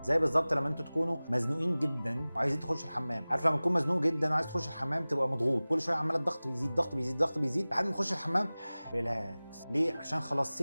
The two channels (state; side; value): inverted; both; correlation -0.99